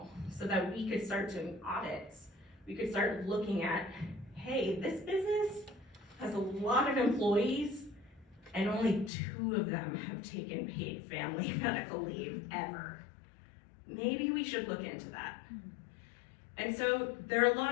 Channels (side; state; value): right; drops out; at 9.1 s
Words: so that we could start doing audits. We could start looking at, hey, this business has a lot of employees and only 2 of them have taken paid family medical leave ever. Maybe we should look into that. And so there are a